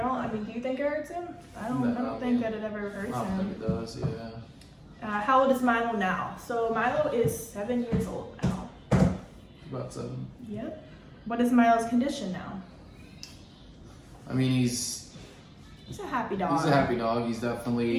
mean, do you think it hurts him? I don't think that it ever hurts him. I don't think it does, yeah. How old is Milo now? So Milo is 7 years old now. About 7. Yep. What is Milo's condition now? I mean, he's a happy dog. He's a happy dog. He's definitely...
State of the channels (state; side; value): identical; both; correlation 1.00